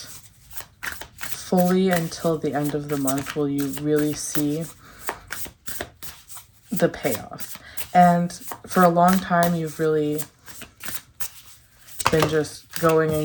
fully until the end of the month will you really see the payoff. And for a long time, you've really been just going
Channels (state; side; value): identical; both; correlation 1.00